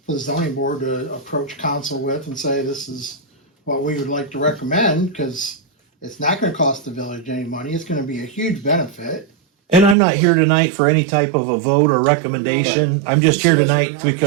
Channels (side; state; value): left; drops out; at 10.0 s